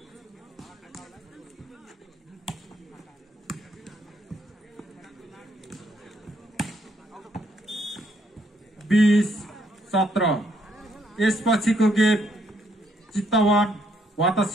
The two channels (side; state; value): both; normal; correlation 0.71